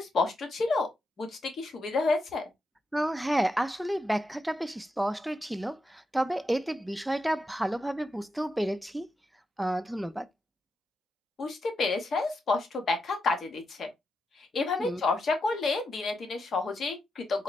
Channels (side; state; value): both; normal; correlation 0.85